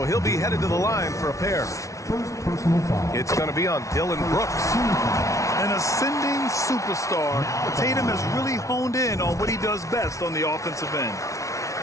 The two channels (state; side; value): late; right; 0.15 ms